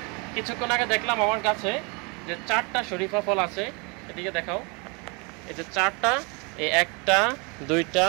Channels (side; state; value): left; quieter; 30.9 dB